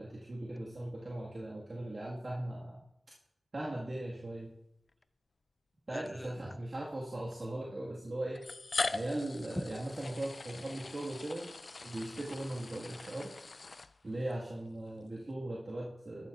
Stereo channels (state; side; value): normal; both; correlation 0.96